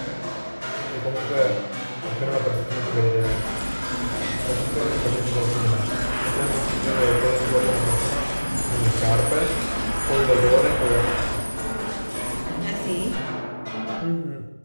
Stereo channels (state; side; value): inverted; both; correlation -1.00